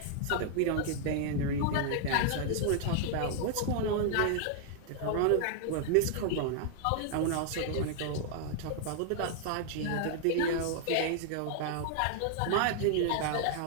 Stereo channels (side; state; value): both; different; correlation 0.00